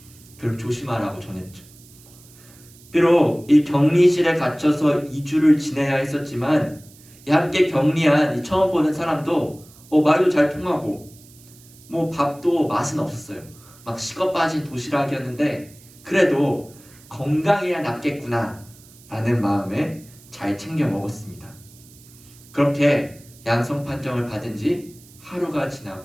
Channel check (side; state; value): right; noise; hiss, 24 dB below the sound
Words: 그리고 조심하라고 전했죠. 비록 이 격리실에 갇혀서 2주를 지내야 했었지만, 함께 격리한 이 처음 보는 사람도 말도 잘 통하고 밥도 맛은 없었어요. 막 식어 빠진 도시락이었는데 그래도 건강해야 낫겠구나 라는 마음에 잘 챙겨 먹었습니다. 그렇게 양성 판정을 받은 지 하루가